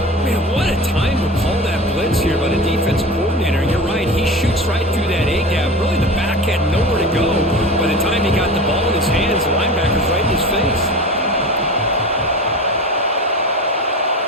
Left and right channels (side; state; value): both; normal; correlation 0.33